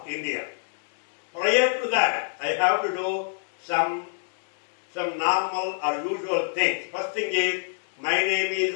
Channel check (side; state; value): right; silent; digital silence